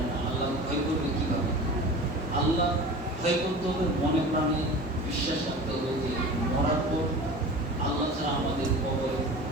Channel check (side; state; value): both; normal; correlation 0.36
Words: না, আল্লাহ ভয় করবে কিভাবে? আল্লাহ ভয় করতে হবে, মনে প্রাণে বিশ্বাস রাখতে হবে যে মরার পর আল্লাহ ছাড়া আমাদের কবরে